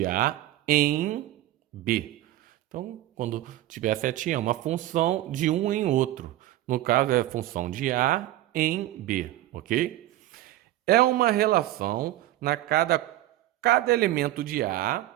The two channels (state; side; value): quieter; left; 15.0 dB